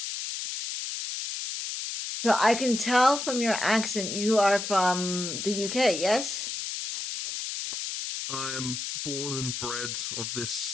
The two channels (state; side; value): noise; left; hiss, 5 dB below the sound